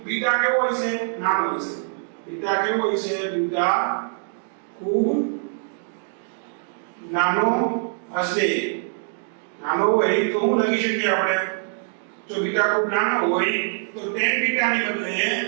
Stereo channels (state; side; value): silent; left; digital silence